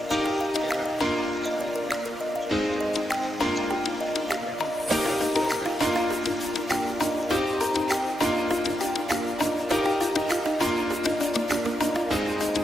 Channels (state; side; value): normal; both; correlation 0.84